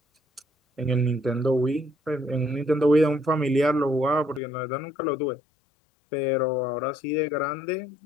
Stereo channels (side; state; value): right; drops out; at 4.4 s